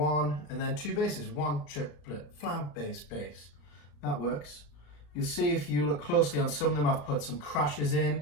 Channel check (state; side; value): late; right; 35 ms